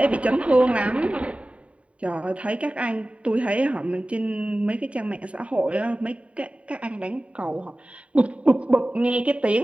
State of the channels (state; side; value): late; left; 0.064 ms